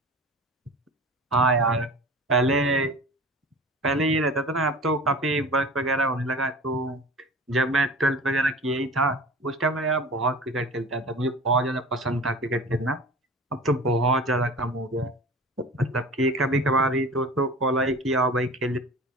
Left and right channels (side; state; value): both; normal; correlation 0.38